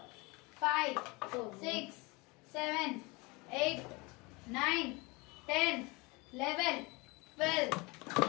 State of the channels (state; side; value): quieter; right; 25.9 dB